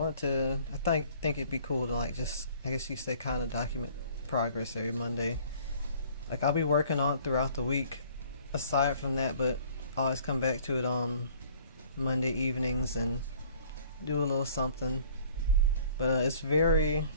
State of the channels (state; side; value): inverted; both; correlation -0.54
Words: think it'd be cool to like just, I guess you say, kind of document progress every Monday. Like I'll be working on it throughout the week aside from that, but I always come back to it on Monday evenings and do a little something. But it's very,